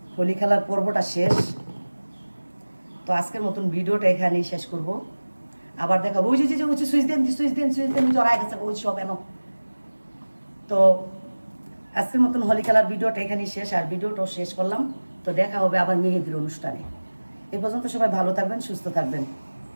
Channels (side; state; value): both; inverted; correlation -1.00